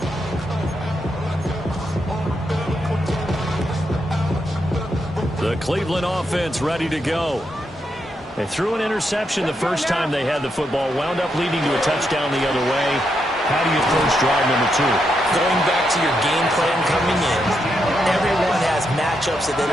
The Cleveland offense ready to go. They threw an interception the first time they had the football, wound up leading to a touchdown the other way. How do you approach drive number 2? Going back to your game plan coming in, everyone has matchups that they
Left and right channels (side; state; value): both; normal; correlation 0.82